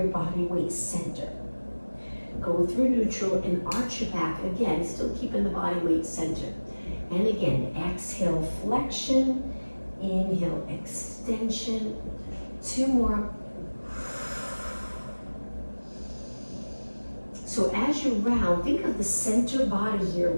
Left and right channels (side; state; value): both; inverted; correlation -1.00